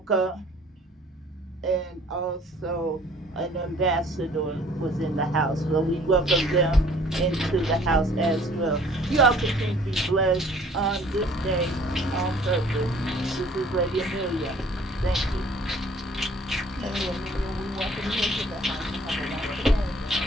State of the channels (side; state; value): both; normal; correlation 0.55